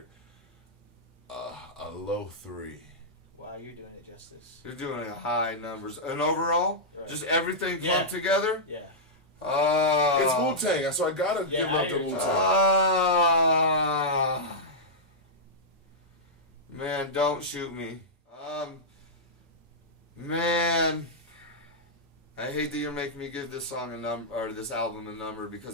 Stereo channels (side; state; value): both; normal; correlation -0.10